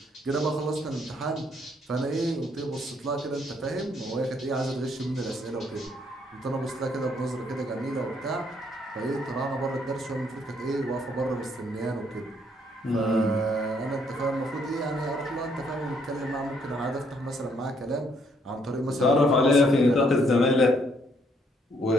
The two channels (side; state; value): both; normal; correlation 0.69